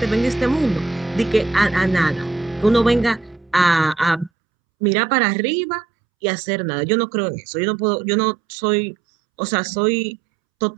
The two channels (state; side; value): drops out; left; at 4.3 s